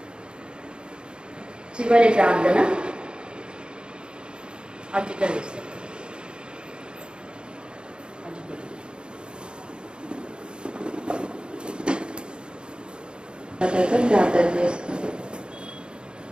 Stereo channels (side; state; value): left; late; 0.052 ms